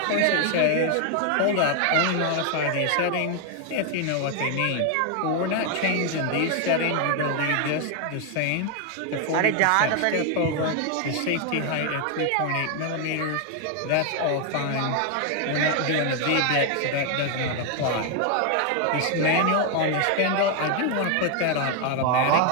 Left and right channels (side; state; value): both; different; correlation 0.01